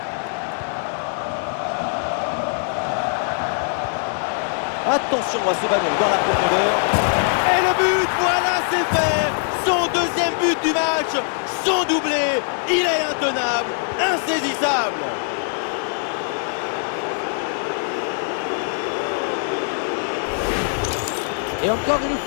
Attention à ce ballon dans la profondeur. Et le but, voilà, c'est fait. Son deuxième but du match. Son doublé. Il est intenable, insaisissable. Et encore une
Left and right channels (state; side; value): silent; right; digital silence